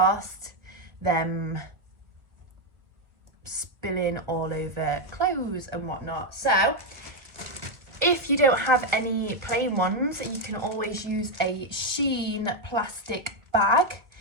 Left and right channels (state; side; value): late; left; 1.6 ms